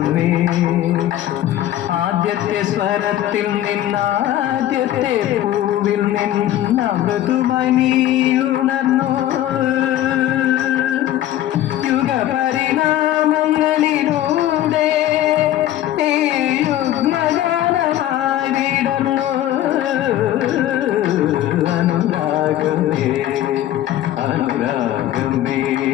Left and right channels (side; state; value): right; quieter; 13.0 dB